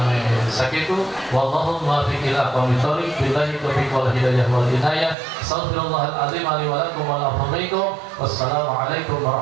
Sakitu wallahu muwaffiq ila aqwamit thoriq billahi taufiq wal hidayah wal inayah. Astaghfirullahal azim li wa lakum wa la ilaha illa huwa. Wassalamu alaikum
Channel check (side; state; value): left; drops out; at 5.2 s